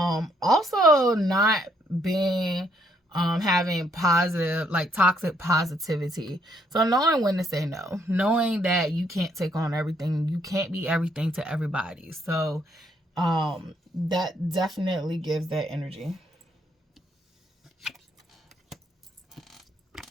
not being having positive, like toxic positivity. So knowing when to say no, knowing that you can't take on everything, you can't be everything to everybody. So that definitely gives that energy.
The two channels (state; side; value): normal; both; correlation 0.71